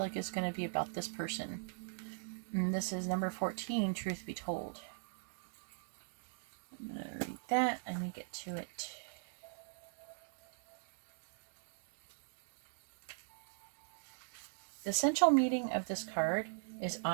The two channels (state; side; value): silent; left; digital silence